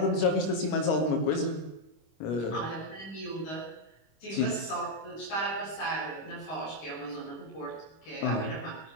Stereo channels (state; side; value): late; right; 25 ms